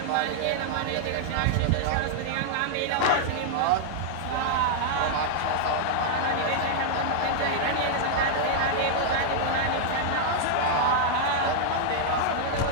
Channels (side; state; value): both; different; correlation -0.01